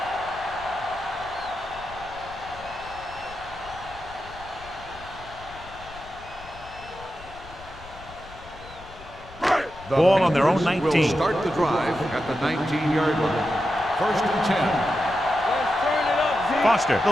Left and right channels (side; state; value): left; noise; rumble, 18 dB below the sound